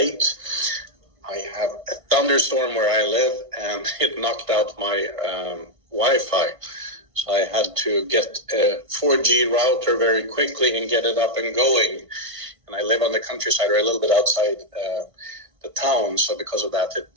I have a thunderstorm where I live, and it knocked out my Wi-Fi. So I had to get a 4G router very quickly and get it up and going. And I live on the countryside, or a little bit outside the town. So because of that, it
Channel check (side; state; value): left; late; 1.6 ms